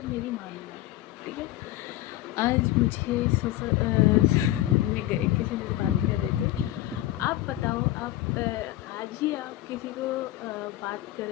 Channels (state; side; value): quieter; right; 15.2 dB